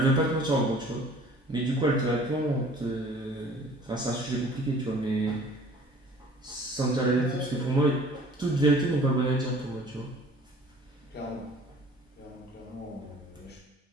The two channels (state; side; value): normal; both; correlation 0.50